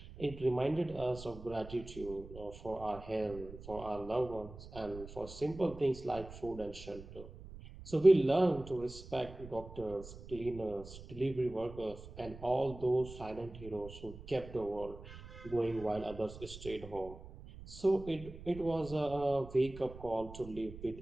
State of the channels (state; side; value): noise; right; rumble, 15 dB below the sound